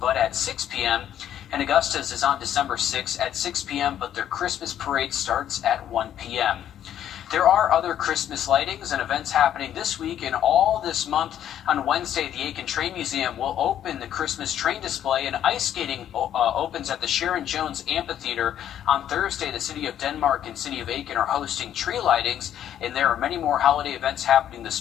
but at 6 p.m. And Augustus is on December 6th at 6 p.m., but their Christmas parade starts at 1 p.m. There are other Christmas lightings and events happening this week and all this month. On Wednesday, the Aiken Train Museum will open the Christmas train display, and ice skating opens at the Sharon Jones Amphitheater. On Thursday, the City of Denmark and City of Aiken are hosting tree lightings, and there are many more holiday events happening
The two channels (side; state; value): right; quieter; 10.6 dB